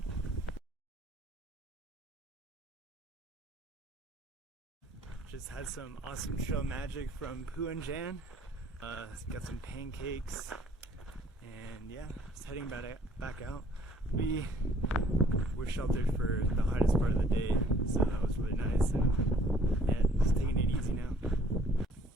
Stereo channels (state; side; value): normal; both; correlation 0.59